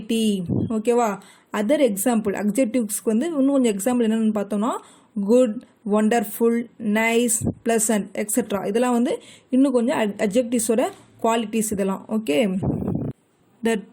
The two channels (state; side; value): identical; both; correlation 1.00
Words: ஓகேவா? அதர் எக்ஸாம்பிள் அட்ஜெக்டிவ்ஸ்க்கு வந்து இன்னும் கொஞ்சம் எக்ஸாம்பிள் என்னென்னு பார்த்தோம்னா good, wonderful, nice, pleasant etcetera. இதெல்லாம் வந்து இன்னும் கொஞ்சம் அட்ஜெக்டிவ்ஸோட குவாலிட்டிஸ் இதெல்லாம். Okay. The